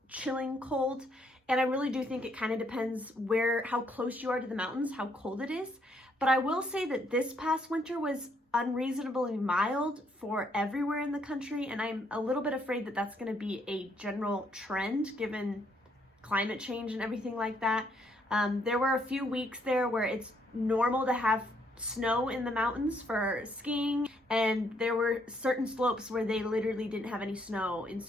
chilling cold. And I really do think it kind of depends how close you are to the mountains, how cold it is. But I will say that this past winter was unreasonably mild for everywhere in the country, and I'm a little bit afraid that that's going to be a general trend given climate change and everything like that. There were a few weeks there where it's normal to have snow in the mountains for skiing, and there were certain slopes where they literally didn't have any snow in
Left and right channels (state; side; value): normal; both; correlation 0.71